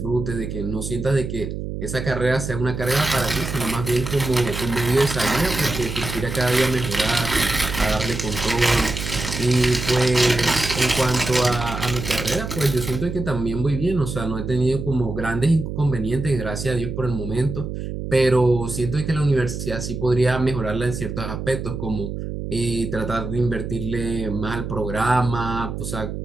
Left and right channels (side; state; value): right; noise; hum, 6 dB below the sound